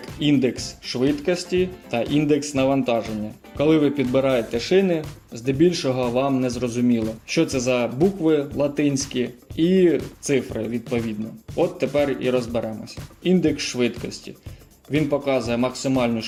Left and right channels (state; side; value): identical; both; correlation 1.00